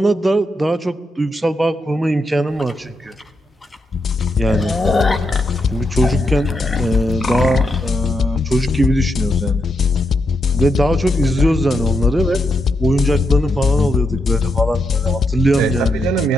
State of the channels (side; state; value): both; normal; correlation 0.82